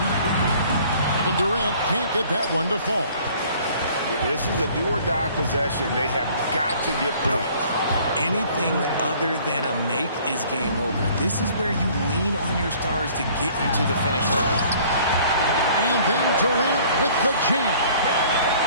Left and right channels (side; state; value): both; inverted; correlation -0.54